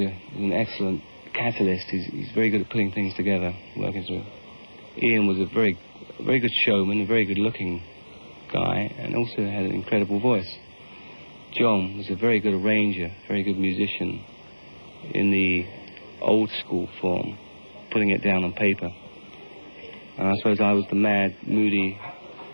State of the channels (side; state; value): both; inverted; correlation -1.00